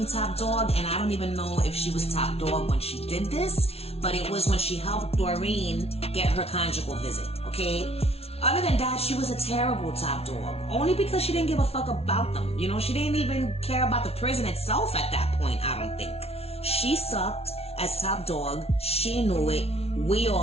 top dog, and I don't even know if she was top dog when she did this, but it was when she helped Doreen get her conjugal visit, okay? Other than that, she was a terrible top dog, only because she didn't give a fuck about them. You know, she didn't even care about the prison itself at that point, I don't think. She sucked as top dog, she knew it, we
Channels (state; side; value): late; right; 0.30 ms